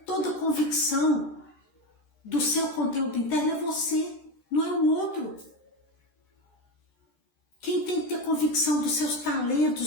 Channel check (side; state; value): right; late; 13 ms